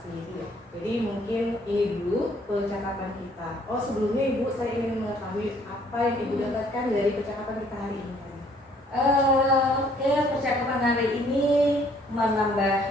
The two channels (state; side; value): normal; both; correlation 0.62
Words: Jadi mungkin ini dulu percakapan kita. Oh, sebelumnya Ibu, saya ingin mengetahui apa yang Ibu dapatkan dari percakapan kita hari ini. Percakapan hari ini